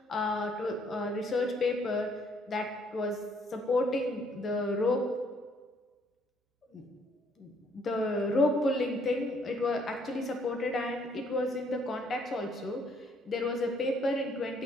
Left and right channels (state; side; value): normal; both; correlation 0.66